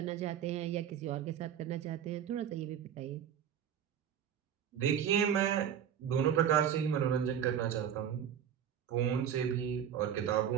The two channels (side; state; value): left; quieter; 9.0 dB